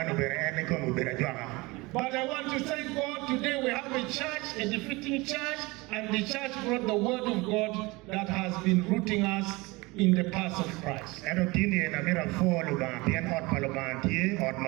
bere eni kono bere jwaka. But I want to thank God today we have a church, a defeating church, and the church brought the word of God that has been rooting us in the path of Christ. Eno tini na mira folo ba bien ot palo ba tie ot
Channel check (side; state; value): left; quieter; 23.5 dB